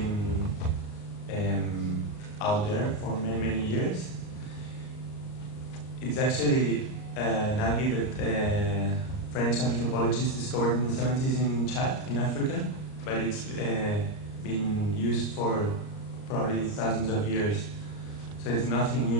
out there for many, many years. It's actually an algae that French anthropologists discovered in the 70s in Chad, in Africa, but it's been used for probably thousands of years. So it's nothing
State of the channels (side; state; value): right; late; 38 ms